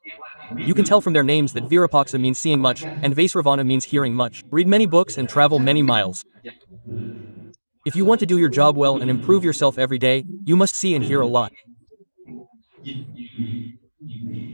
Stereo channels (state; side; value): inverted; both; correlation -1.00